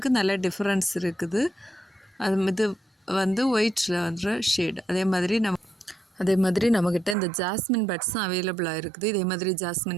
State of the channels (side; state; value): left; drops out; at 7.2 s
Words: நல்ல டிஃப்ரென்ஸ் இருக்குது. இது ஒயிட்டில் வந்துற ஷேடு. அதே மாதிரி நம்மக்கிட்ட இந்த ஜாஸ்மின் பட்ஸும் அவைலபிளாக இருக்குது. இதே மாதிரி